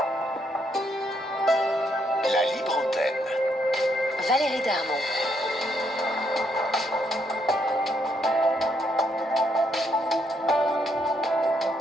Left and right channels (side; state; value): both; normal; correlation 0.74